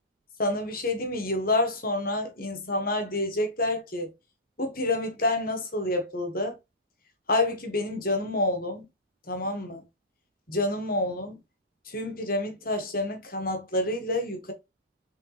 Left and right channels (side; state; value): both; normal; correlation -0.19